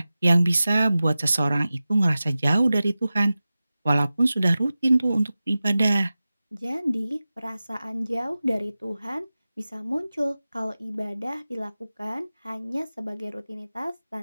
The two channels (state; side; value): inverted; both; correlation -0.96